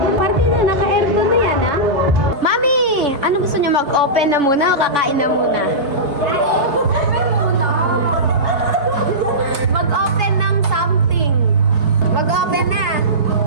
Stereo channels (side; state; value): left; late; 3.2 ms